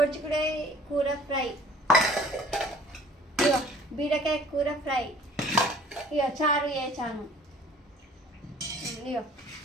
కూర ఫ్రై, ఇగో బీరకాయ కూర ఫ్రై, ఇగో చారు వేసాను, ఇగో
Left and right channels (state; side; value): normal; both; correlation 0.51